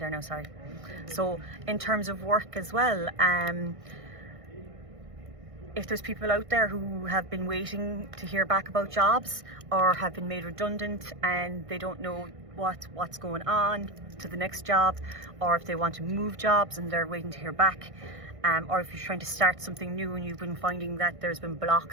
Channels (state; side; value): late; left; 1.6 ms